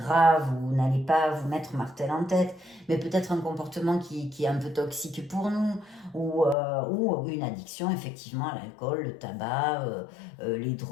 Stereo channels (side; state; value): right; drops out; at 6.6 s